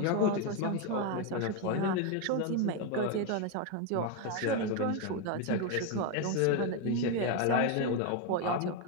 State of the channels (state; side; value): different; both; correlation 0.02